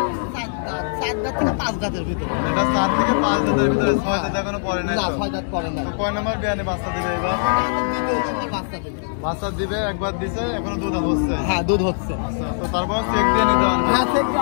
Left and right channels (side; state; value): right; silent; digital silence